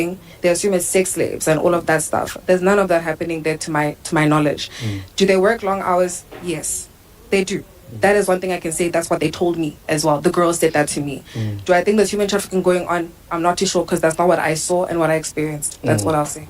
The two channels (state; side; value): identical; both; correlation 1.00